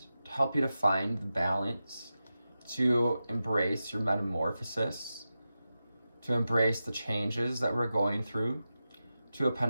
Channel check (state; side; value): inverted; both; correlation -0.92